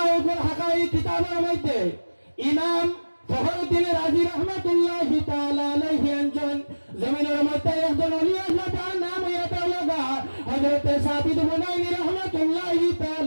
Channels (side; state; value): both; inverted; correlation -1.00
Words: উপর হাকা এই কিতাবের মধ্যে ইমাম ফখরুদ্দিন রাজি রহমাতুল্লাহি তাআলা আলাইহি একজন জমিনের মধ্যে একজন ওলি আল্লাহ, তার নাম ইয়াতাওয়াগা হযরত সাবিত বুনাইনি রহমাতুল্লাহি